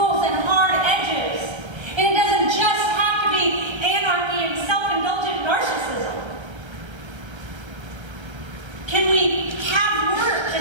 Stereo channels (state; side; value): late; left; 1.3 ms